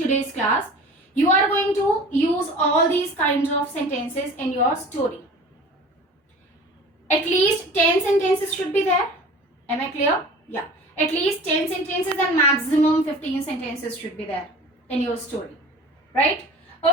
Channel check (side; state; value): both; normal; correlation 0.41